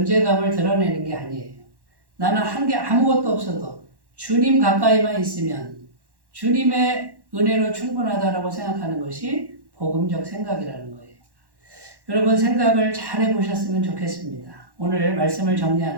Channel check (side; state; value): left; late; 1.1 ms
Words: 드러내는 게 아니에요. 나는 한 게 아무것도 없어도 주님 가까이만 있으면 주님의 은혜로 충분하다라고 생각하는 것이 복음적 생각이라는 거예요. 여러분 생각을 잘 해보셨으면 좋겠습니다. 오늘 말씀을